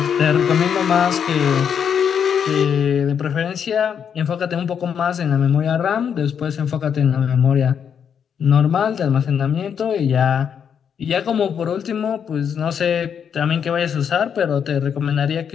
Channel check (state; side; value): quieter; right; 7.7 dB